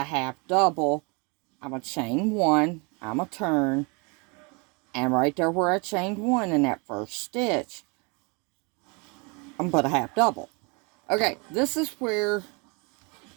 half double. I'm going to chain 1. I'm going to turn. And right there where I chained 1 in that first stitch, I'm going to put a half double. Okay, this is where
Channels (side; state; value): left; quieter; 31.1 dB